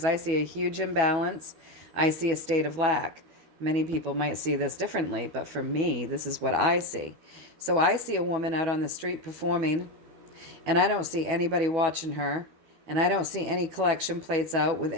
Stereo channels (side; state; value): left; late; 12 ms